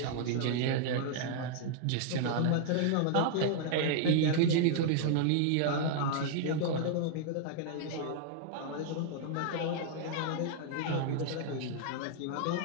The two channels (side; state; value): both; different; correlation -0.01